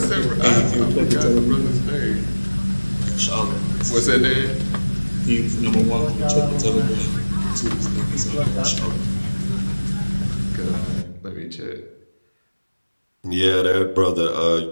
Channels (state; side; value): inverted; both; correlation -1.00